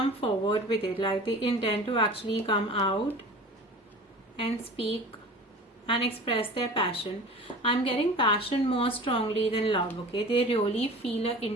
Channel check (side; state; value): both; normal; correlation 0.38